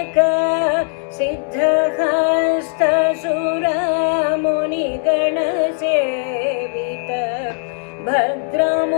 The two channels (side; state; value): right; silent; digital silence